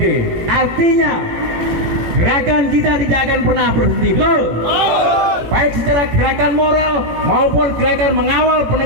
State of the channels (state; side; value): late; left; 17 ms